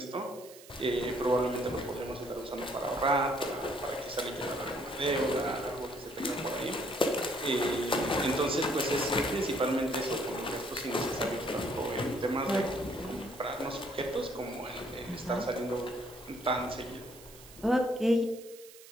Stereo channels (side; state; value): right; noise; hiss, 19 dB below the sound